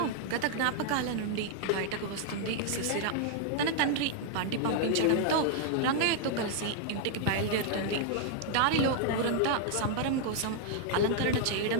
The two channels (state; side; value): different; both; correlation -0.01